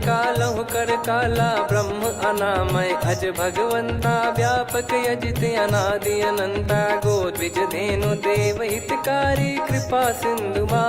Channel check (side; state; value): both; identical; correlation 1.00